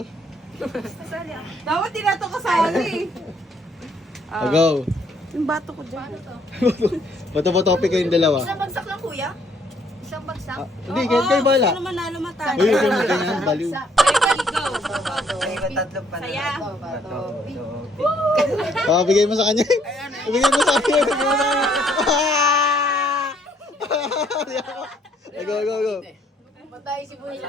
Kasali ah. Dapat di na ito kasali. Oh, go. Yung bato ko dyan. Bato ba topic kayong dalawa? Isang bagsak lang kuya? Isang bagsak? Hindi, kayo bala. Sino manalo matalo? Uy, huwag mo ganyan, baliw. Saya. Bigay mo sa kanya. Bigay mo sa kanya. Bigay mo sa kanya. Go. Matay si Buhay.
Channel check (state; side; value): normal; both; correlation 0.66